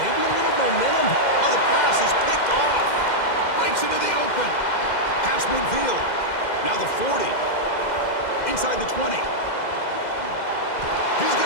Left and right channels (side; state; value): right; late; 2.1 ms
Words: maybe a little momentum. Oh, the pass is picked off. Breaks into the open. Pass midfield. Now the 40. Inside the 20. He's